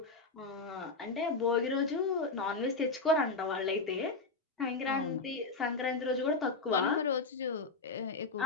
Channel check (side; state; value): right; quieter; 3.8 dB